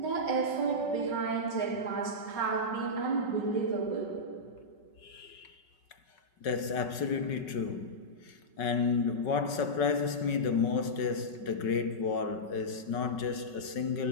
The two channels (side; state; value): right; late; 5.3 ms